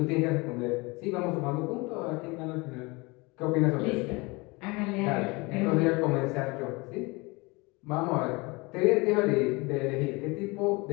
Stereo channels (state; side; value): quieter; right; 25.6 dB